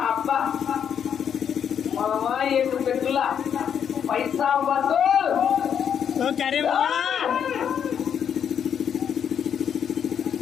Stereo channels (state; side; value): quieter; right; 8.2 dB